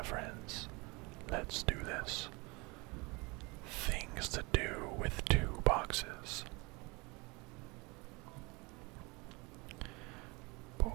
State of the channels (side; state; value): left; quieter; 26.9 dB